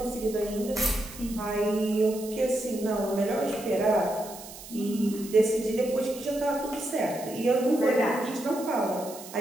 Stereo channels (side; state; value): right; noise; hiss, 15 dB below the sound